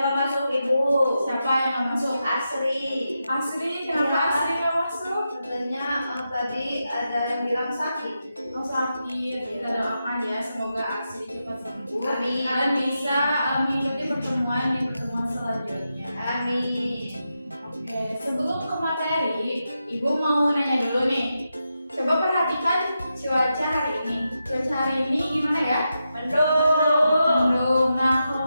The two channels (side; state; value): both; inverted; correlation -0.88